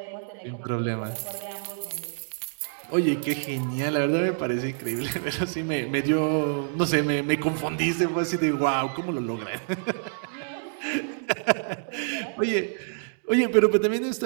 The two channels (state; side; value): silent; left; digital silence